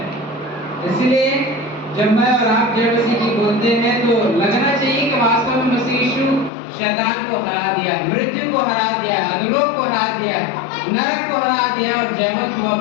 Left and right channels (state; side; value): drops out; right; at 6.5 s